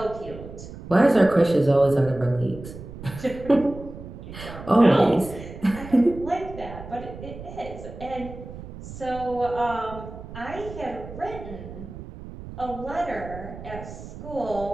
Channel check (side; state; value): right; noise; rumble, 13 dB below the sound